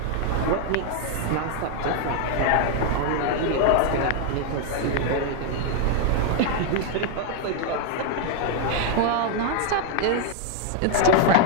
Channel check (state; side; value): different; both; correlation 0.00